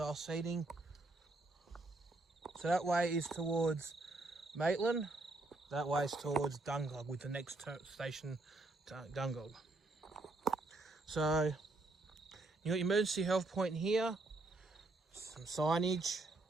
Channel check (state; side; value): quieter; left; 3.0 dB